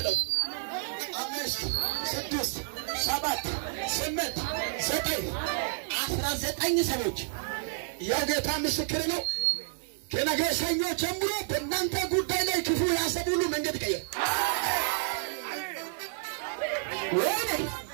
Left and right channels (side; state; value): left; silent; 58 dB below the other